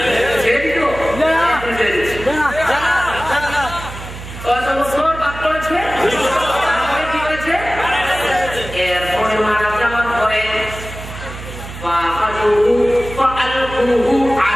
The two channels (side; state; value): right; noise; hum, 12 dB below the sound